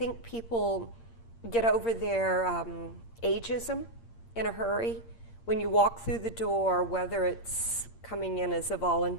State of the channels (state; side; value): late; right; 8.7 ms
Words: people get over their ageism in a hurry. When you walk through the door, whether it's coming in as a